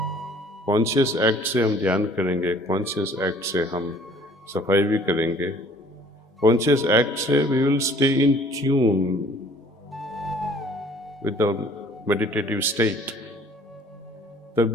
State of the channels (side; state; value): both; normal; correlation 0.54